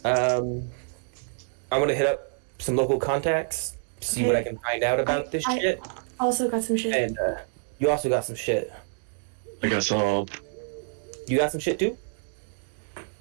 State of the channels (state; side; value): silent; left; digital silence